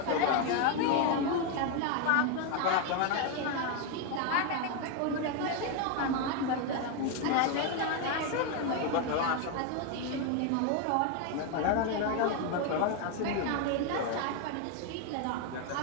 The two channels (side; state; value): both; different; correlation 0.01